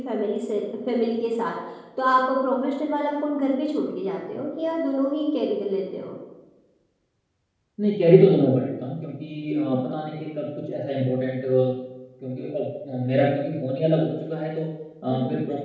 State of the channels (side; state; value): both; identical; correlation 1.00